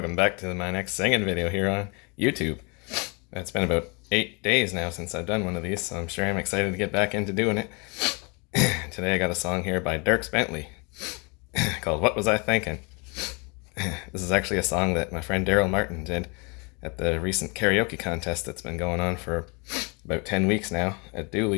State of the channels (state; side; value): quieter; right; 31.1 dB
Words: back to my next singing video here on YouTube. It's been about 8 days now since I've done one of these, so I'm sure I'm excited to get back into doing it. Today I got a song here by Dierks Bentley called What Was I Thinkin'? This is actually a song that my friend Daryl Martin did at the recent karaoke contest that's been going on for about 10 weeks now at